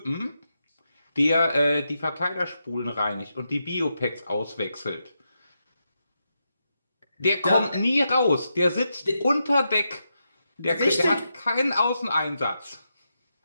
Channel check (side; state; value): both; inverted; correlation -0.85